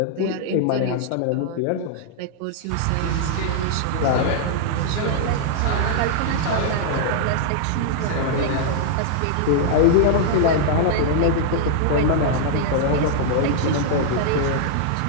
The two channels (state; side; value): different; both; correlation -0.01